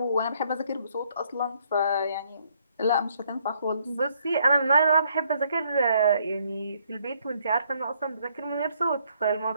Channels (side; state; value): both; inverted; correlation -0.69